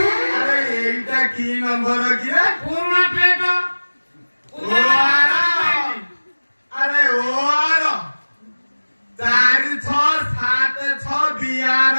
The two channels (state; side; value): inverted; both; correlation -1.00